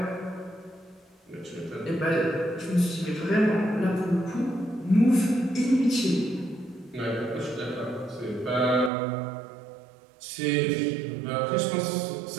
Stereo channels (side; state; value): left; drops out; at 8.9 s